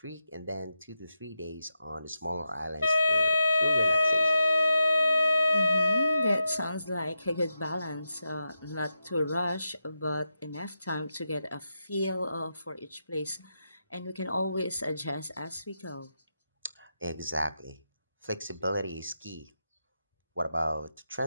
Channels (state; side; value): inverted; both; correlation -0.87